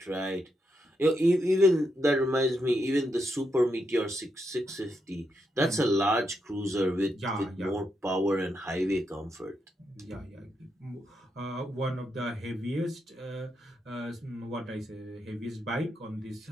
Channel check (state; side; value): normal; both; correlation 0.82